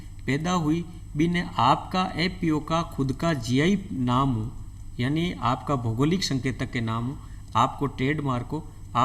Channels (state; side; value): identical; both; correlation 1.00